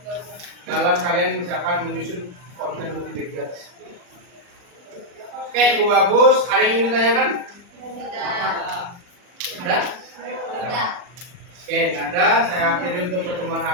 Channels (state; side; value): late; left; 40 ms